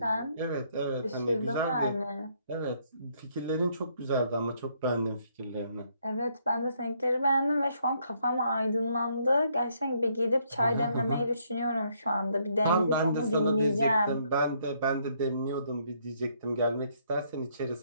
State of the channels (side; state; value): both; inverted; correlation -0.70